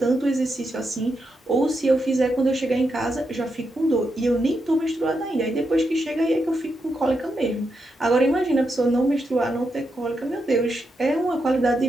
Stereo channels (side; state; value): both; normal; correlation 0.84